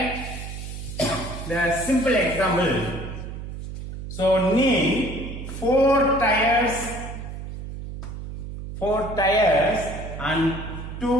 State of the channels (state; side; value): noise; right; hum, 9 dB below the sound